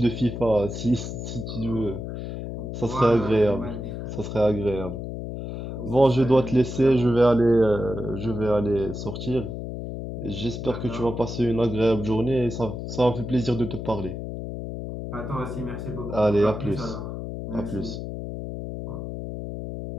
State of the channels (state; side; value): noise; left; hum, 7 dB below the sound